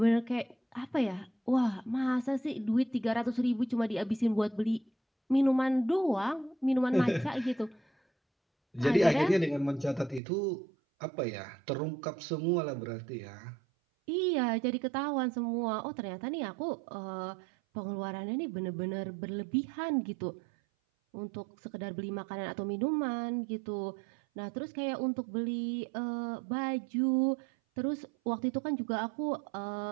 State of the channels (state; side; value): drops out; left; at 10.2 s